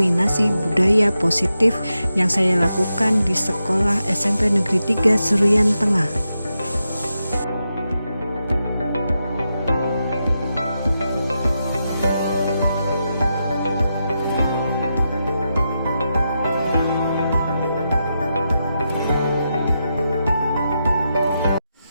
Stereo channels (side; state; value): both; inverted; correlation -0.87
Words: budaya positif yang saya lakukan di sekolah SMP Negeri 3 Seruyan Tengah.